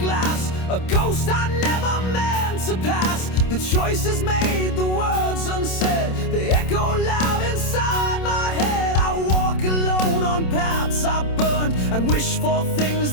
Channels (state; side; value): late; right; 27 ms